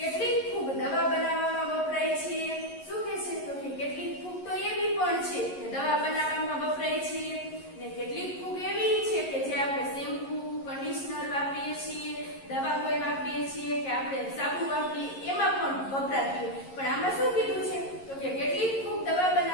ફૂગ દવા બનાવવામાં વપરાય છે. શું કહે છે તો કે કેટલીક ફૂગ તો એવી પણ છે કે દવા બનાવવામાં વપરાય છે ને કેટલીક ફૂગ એવી છે કે જે આપણે શેમ્પુ કન્ડિશનર વાપરીએ છીએ દવા કોઈ વાપરીએ છીએ કે આપણે સાબુ વાપરીએ એમાં પણ વપરાતી હોય. પણ આમાં શું કીધું છે તો કે કેટલીક ફૂગ દવા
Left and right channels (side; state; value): right; late; 11 ms